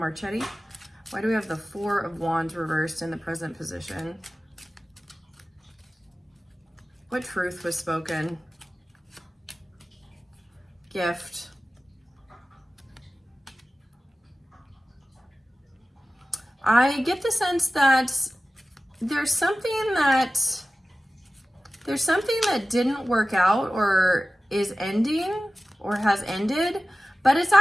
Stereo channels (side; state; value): both; normal; correlation 0.95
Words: Why do we have the Four of Wands reversed in the present position? What truth was spoken? Gift. I get the sense that there's something that didn't work out, or is ending, or has ended, but it's